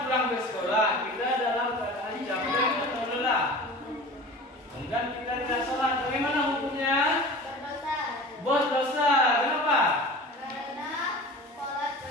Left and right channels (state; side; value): normal; both; correlation 0.38